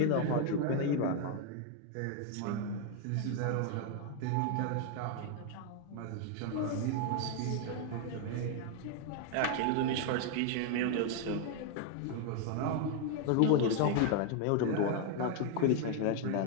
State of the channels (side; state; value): both; different; correlation 0.00